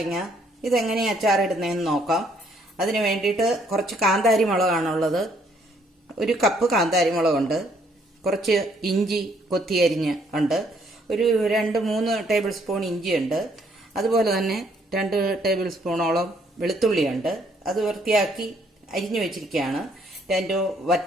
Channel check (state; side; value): normal; both; correlation 0.67